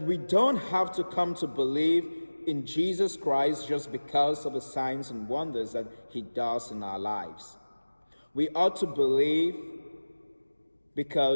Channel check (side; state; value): both; inverted; correlation -1.00